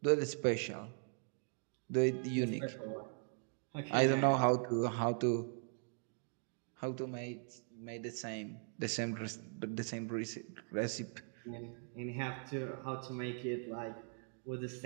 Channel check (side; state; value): left; silent; 51 dB below the other